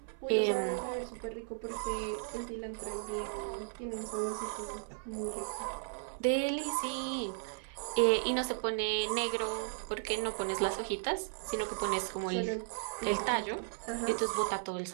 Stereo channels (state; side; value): silent; left; 54 dB below the other